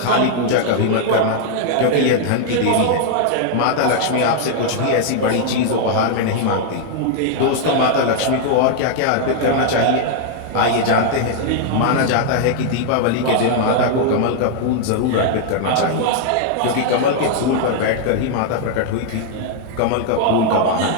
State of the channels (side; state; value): both; different; correlation 0.00